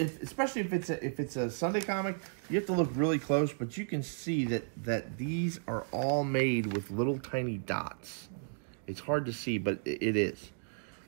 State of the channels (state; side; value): silent; left; digital silence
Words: if it's a Sunday comic, you have to look really close, but you can see that these are all made with little tiny dots. It's hard to see, but it is.